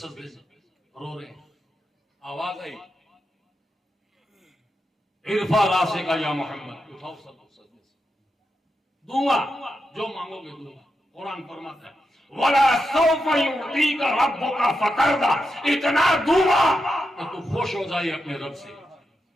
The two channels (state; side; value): normal; both; correlation 0.86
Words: سے رو رہے ہیں، آواز آئی ارفع راسک یا محمد، اٹھاؤ سجدے سے، دوں گا جو مانگو گے دوں گا۔ قرآن فرماتا ہے وَلَا سَوْفَ يُعْطِيكَ رَبُّكَ فَتَرْضَىٰ، اتنا دوں گا کہ تو خوش ہو جائے اپنے رب سے،